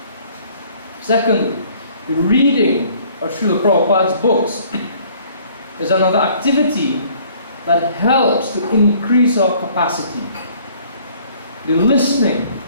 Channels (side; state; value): both; inverted; correlation -0.57